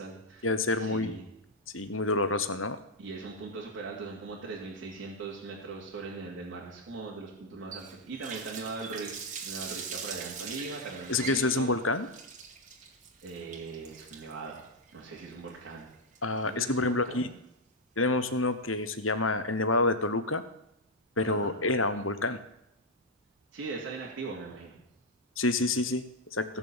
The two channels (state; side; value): normal; both; correlation -0.01